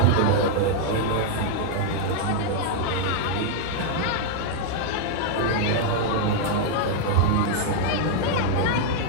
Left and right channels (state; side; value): different; both; correlation -0.01